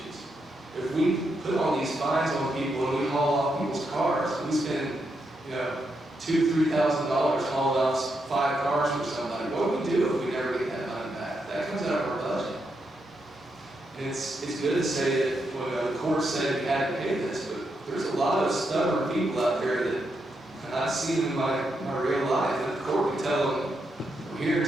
If we put all these fines on people and we haul off people's cars, we spend, you know, $2,000, $3,000 hauling off 5 cars for somebody. What do we do if we never get that money back? That comes out of our budget. And it's good to say that when the court said we had to pay this, but there's a lot of stubborn people out there that I've seen in my real life, and the court can tell them, we're here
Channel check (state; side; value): normal; both; correlation 0.82